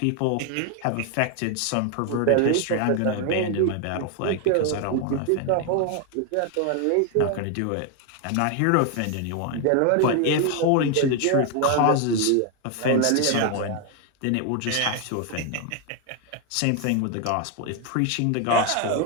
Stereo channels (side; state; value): both; different; correlation 0.01